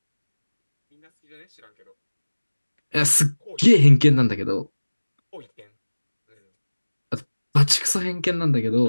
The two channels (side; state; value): both; inverted; correlation -1.00